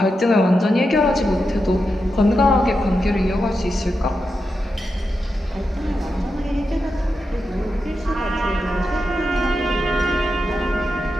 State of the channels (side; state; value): both; normal; correlation 0.88